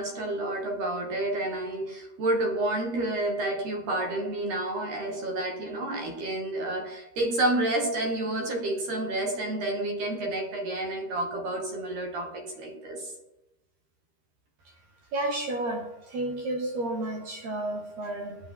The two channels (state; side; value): late; left; 13 ms